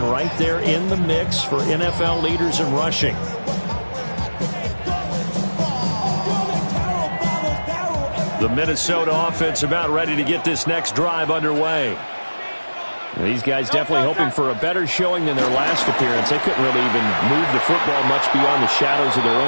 right there in the mix for NFL leaders in rushing. The Minnesota offense about ready to get this next drive underway. These guys definitely hoping for a better showing than their last appearance. They couldn't really even move the football much beyond the shadows of their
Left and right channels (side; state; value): both; inverted; correlation -1.00